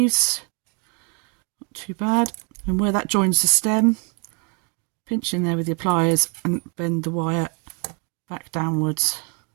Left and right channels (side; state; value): left; quieter; 35.8 dB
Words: not too bad. And where that joins the stem, pinch in there with your pliers and bend the wire back downwards.